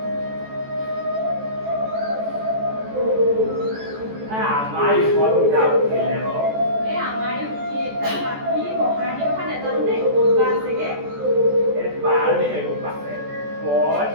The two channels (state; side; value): late; left; 14 ms